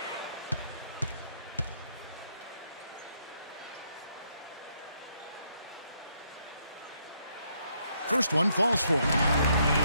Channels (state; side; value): inverted; both; correlation -0.73